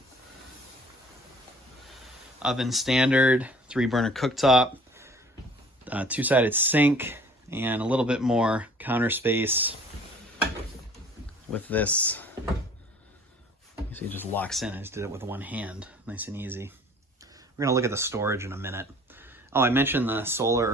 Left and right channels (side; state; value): both; normal; correlation 0.51